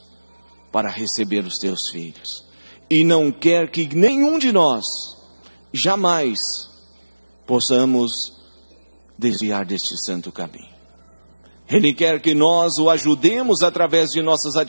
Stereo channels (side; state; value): both; inverted; correlation -1.00